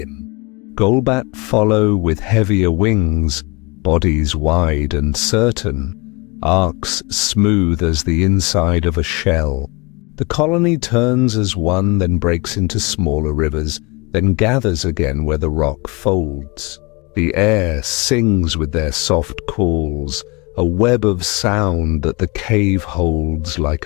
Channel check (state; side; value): quieter; right; 27.7 dB